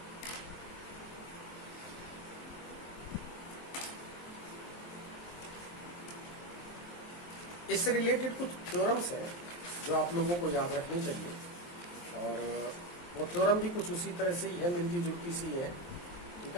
इससे रिलेटेड कुछ थ्योरम्स हैं जो आप लोगों को याद रखनी चाहिए, और वो थ्योरम भी कुछ उसी तरह से ही है, मिलती जुलती सी है। ठीक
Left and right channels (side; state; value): right; late; 23 ms